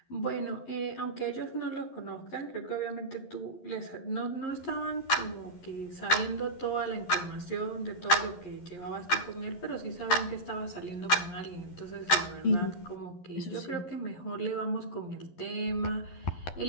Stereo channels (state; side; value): late; right; 11 ms